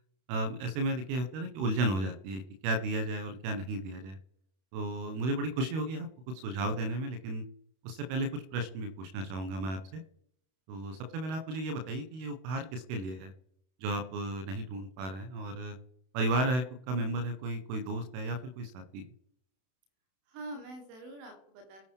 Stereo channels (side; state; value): left; late; 32 ms